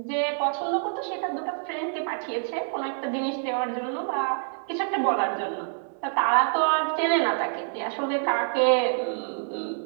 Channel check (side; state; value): left; silent; 60 dB below the other